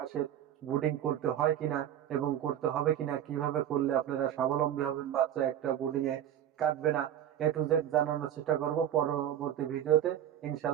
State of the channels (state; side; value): quieter; left; 10.7 dB